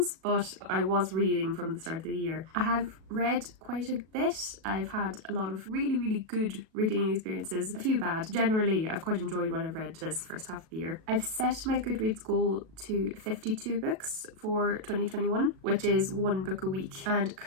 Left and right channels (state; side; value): late; left; 37 ms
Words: but I was reading from the start of the year. I have read quite a bit. I've had a lot of really good reading experiences, a few bad. Generally, I've quite enjoyed what I've read this first half of the year. I've set my Goodreads goal to 52 books for 2021, which is 1 book a week, and